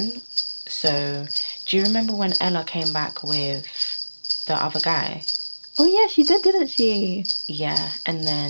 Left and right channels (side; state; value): both; inverted; correlation -1.00